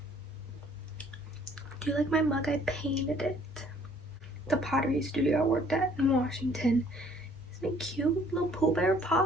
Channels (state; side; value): normal; both; correlation 0.59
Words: Do you like my mug? I painted it. The pottery studio I worked at in Washington. Isn't it cute? Little Pooh Bear